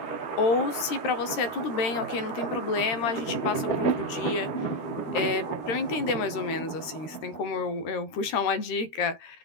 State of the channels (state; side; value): late; right; 13 ms